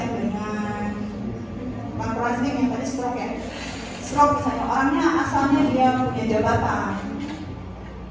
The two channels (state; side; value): identical; both; correlation 1.00